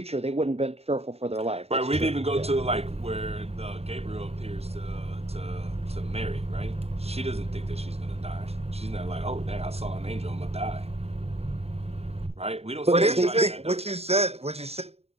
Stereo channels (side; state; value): left; late; 0.30 ms